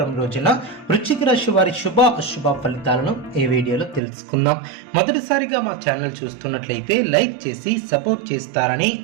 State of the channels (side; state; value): left; drops out; at 4.0 s